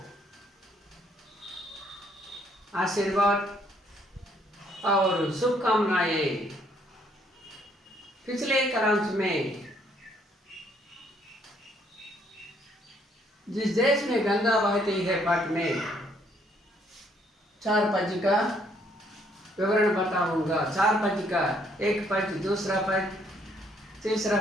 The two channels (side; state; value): both; normal; correlation 0.67